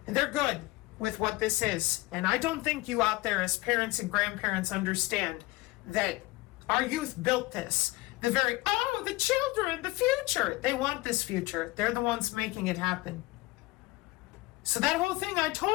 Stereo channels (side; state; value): right; quieter; 20.7 dB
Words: And they're good with what this is. And I don't think you out there as parents and grandparents understand that our youth built this. The children, the future. They want this future. They're the ones making it happen. So that whole thing I